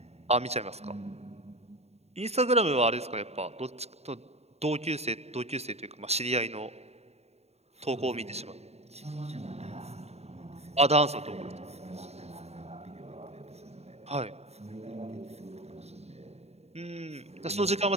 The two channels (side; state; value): left; late; 0.31 ms